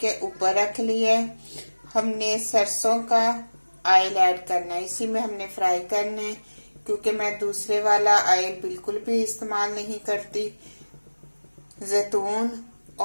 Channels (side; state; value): both; inverted; correlation -1.00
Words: ऊपर रख लिया है। हमने सरसों का ऑयल ऐड करना है, इसी में हमने फ्राई करना है, क्योंकि मैं दूसरे वाला ऑयल बिल्कुल भी इस्तेमाल नहीं करती। जैतून